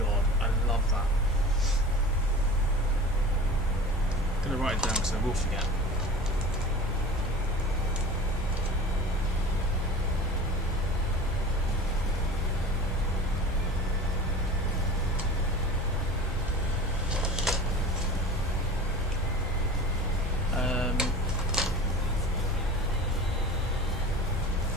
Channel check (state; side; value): normal; both; correlation 0.37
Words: I love that. I'm gonna write it down because I will forget.